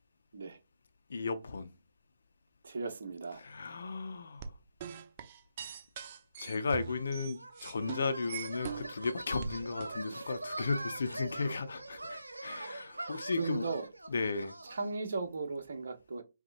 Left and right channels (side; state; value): both; inverted; correlation -0.83